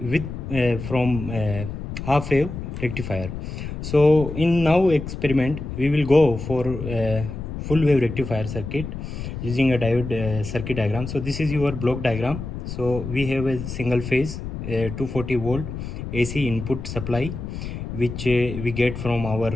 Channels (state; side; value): noise; left; rumble, 7 dB below the sound